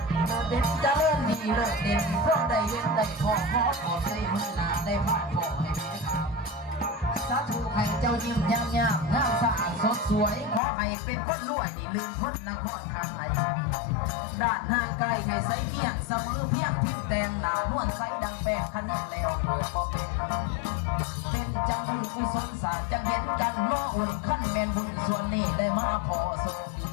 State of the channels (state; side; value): drops out; right; at 10.6 s